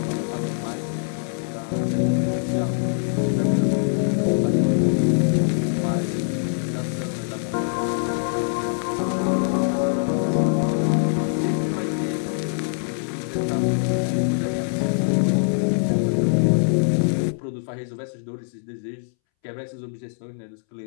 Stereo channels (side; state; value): right; silent; 63 dB below the other